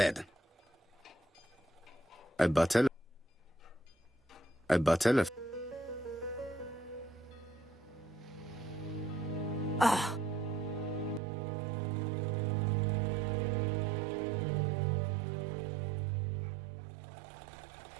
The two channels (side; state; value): left; drops out; at 11.2 s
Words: A bottle of...